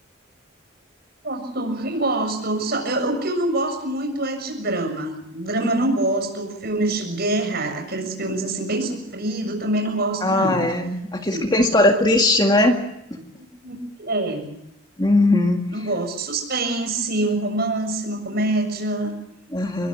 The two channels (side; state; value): both; normal; correlation 0.35